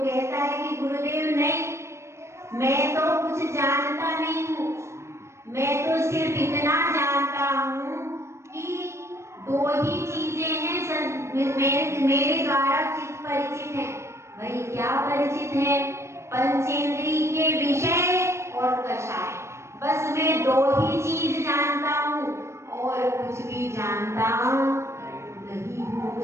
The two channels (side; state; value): left; late; 0.13 ms